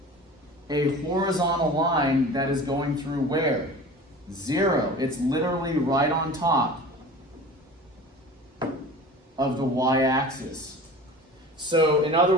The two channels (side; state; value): both; normal; correlation 0.38